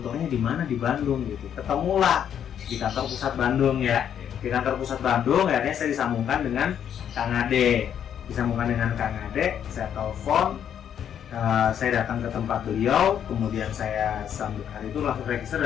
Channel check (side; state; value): right; quieter; 9.1 dB